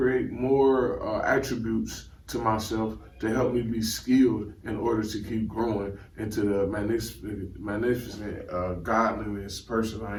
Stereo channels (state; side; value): identical; both; correlation 1.00